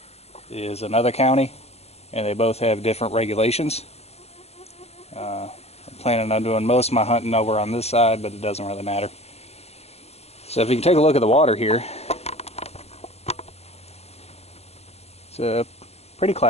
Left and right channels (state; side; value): late; right; 0.30 ms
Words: is another county. And they both have different regulations. I'm planning on doing most of my hunting over on this side, but it doesn't really matter. So if you can take a look at the water here, it's pretty